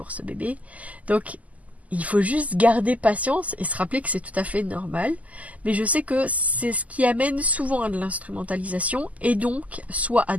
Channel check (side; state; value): left; late; 0.074 ms